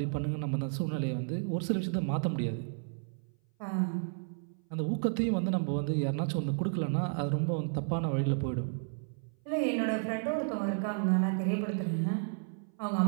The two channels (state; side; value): silent; left; 56 dB below the other